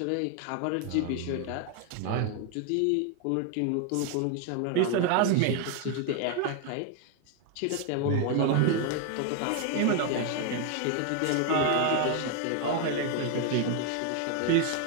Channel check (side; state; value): both; different; correlation 0.01